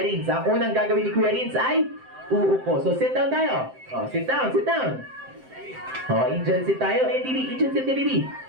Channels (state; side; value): late; left; 7.7 ms